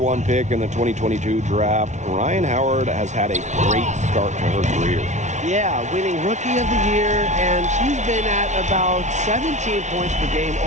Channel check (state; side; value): late; left; 0.34 ms